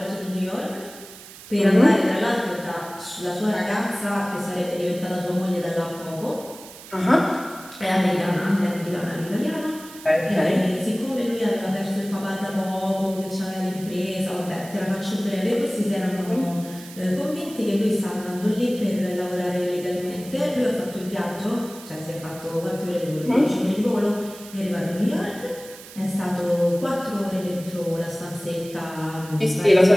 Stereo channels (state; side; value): noise; right; hiss, 17 dB below the sound